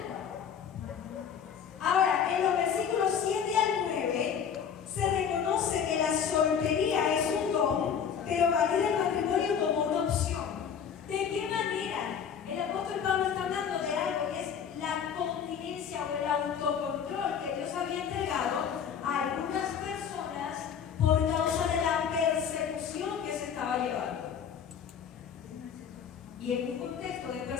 Ahora, en los versículos 7 al 9 se reconoce que la soltería es un don, pero valida el matrimonio como una opción. ¿De qué manera? El apóstol Pablo está hablando de algo que es la continencia o el autocontrol que Dios había entregado a algunas personas por causa de la persecución que se estaba llevando. Y en un contexto de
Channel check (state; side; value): quieter; right; 7.6 dB